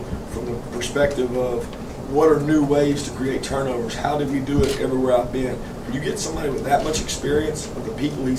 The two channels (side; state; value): both; identical; correlation 1.00